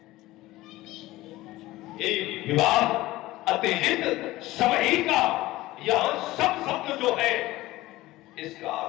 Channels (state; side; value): quieter; right; 17.7 dB